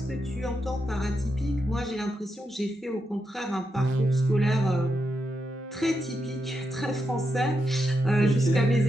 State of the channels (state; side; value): normal; both; correlation 0.85